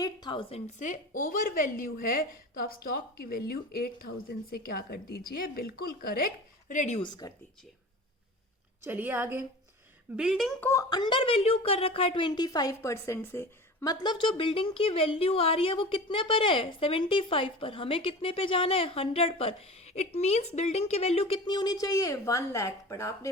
से ओवर वैल्यू है, तो आप स्टॉक की वैल्यू 8,000 से क्या कर दीजिए? बिल्कुल करेक्ट, रिड्यूस कर दीजिए। चलिए आगे। बिल्डिंग को अंडर वैल्यू कर रखा है 25% से, मतलब जो बिल्डिंग की वैल्यू आ रही है वो कितने पर है, 75 पर। हमें कितने पे जाना है, 100 पर। इट मीन्स बिल्डिंग की वैल्यू कितनी होनी चाहिए, 1 लाख। पर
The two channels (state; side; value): normal; both; correlation 0.35